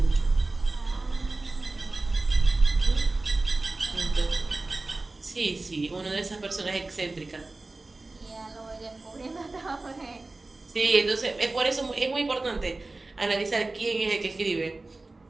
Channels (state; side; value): quieter; left; 3.2 dB